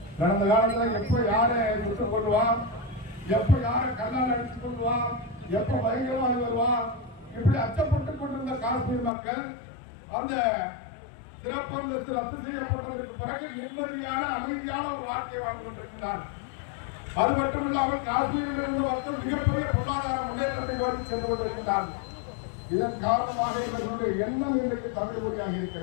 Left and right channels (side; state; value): right; drops out; at 9.1 s